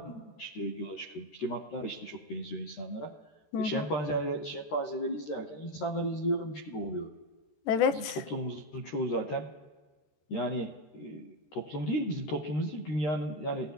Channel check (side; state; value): right; late; 13 ms